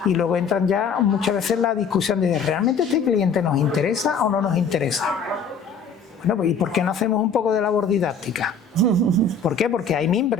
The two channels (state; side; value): quieter; right; 5.1 dB